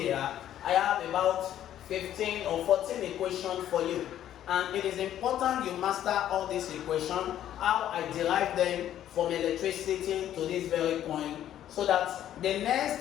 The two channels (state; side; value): quieter; right; 11.4 dB